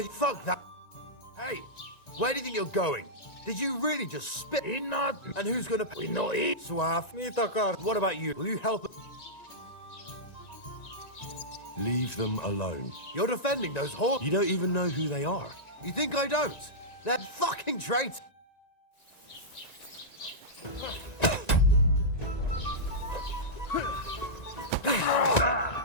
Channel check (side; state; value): right; late; 1.9 ms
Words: you... Fuck that... Hey, where do you think you're going? Did you really just spit? Not... And who's gonna... We know it. Suave. What about you? Will you help... Leave them alone. You're defending those horses. You don't even know who they are. You think I don't? They're fucking traitors.